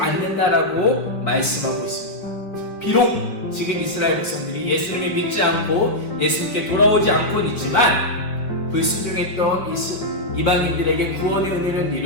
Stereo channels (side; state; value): right; late; 4.4 ms